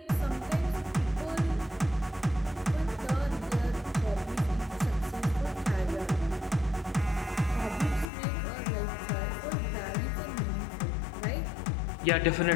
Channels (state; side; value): drops out; right; at 8.1 s